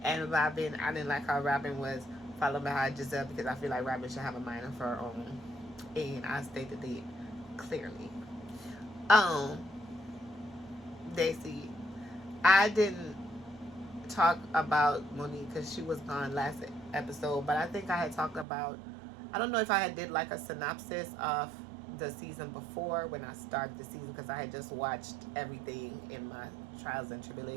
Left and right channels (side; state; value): left; drops out; at 18.4 s